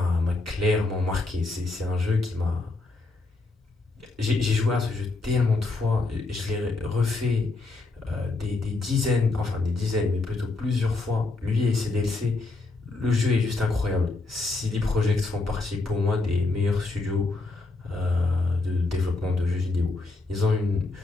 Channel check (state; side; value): quieter; right; 3.4 dB